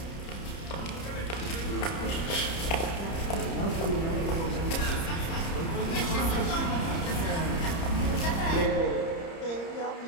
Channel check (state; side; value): late; right; 30 ms